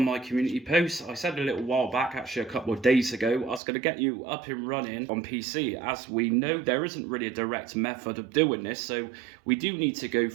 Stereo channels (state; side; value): drops out; left; at 3.6 s